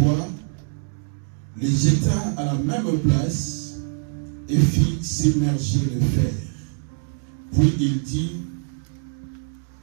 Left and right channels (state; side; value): silent; left; digital silence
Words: le jeta à la même place et fit s'immerger le fer. Puis il dit,